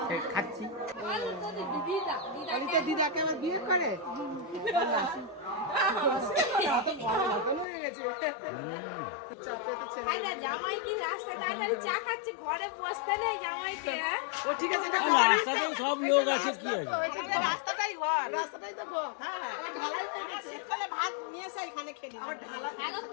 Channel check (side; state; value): right; drops out; at 7.7 s